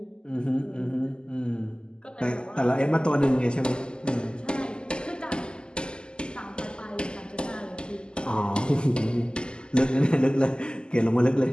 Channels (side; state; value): right; late; 0.048 ms